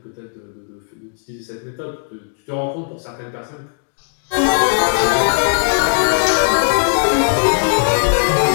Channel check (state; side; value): silent; right; 67 dB below the other